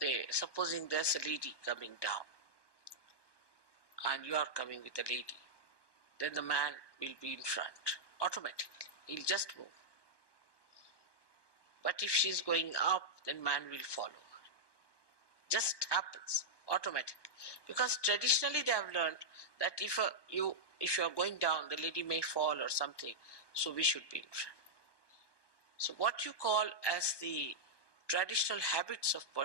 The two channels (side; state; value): right; late; 1.2 ms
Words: supposing there's a lady coming down, and you are coming with a lady, then the man will be in front automatically. He'll just move. But if she's going up, then man will follow her. Just happens automatically. Because traditionally they have learned that if you are going down, the lady may fall or something, so we should be in front. So what you call as the traditional habits of